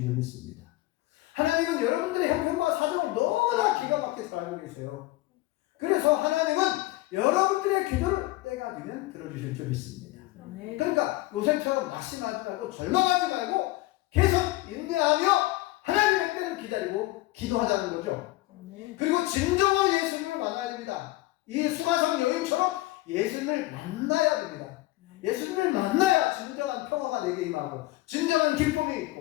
줄 믿습니다. 하나님은 여러분들의 형편과 사정을 너무나 기가 막히게 잘 알고 계세요. 그래서 하나님은 여러분들의 기도를 때가 되면 들어주실 줄 믿습니다. 그러니까 요셉처럼 낙심하지 말고 절망하지 말고 계속 인내하며 하나님의 때를 기다리고 기도하자는 거죠. 그리고 진정한 예수님을 만나야 됩니다. 이 수가성 여인처럼 예수님을 만나야 됩니다. 예수님을 만나야 진정한 평화가 내게 임하고 진정한 기쁨이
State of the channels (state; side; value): quieter; right; 18.6 dB